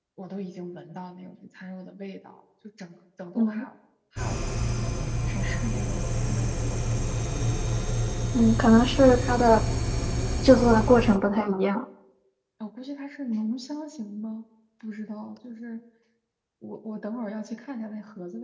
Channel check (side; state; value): both; identical; correlation 1.00